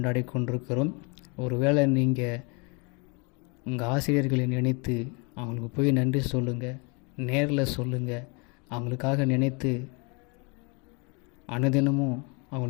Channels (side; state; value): right; quieter; 31.8 dB